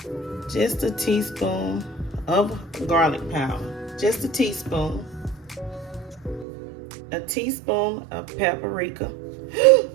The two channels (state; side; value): drops out; left; at 6.5 s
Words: just a teaspoon of garlic powder. Just a teaspoon. A teaspoon of paprika.